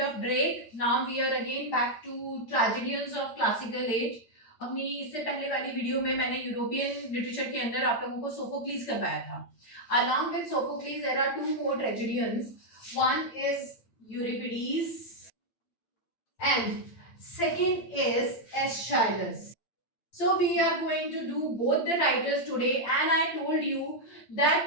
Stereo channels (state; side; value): late; right; 8.8 ms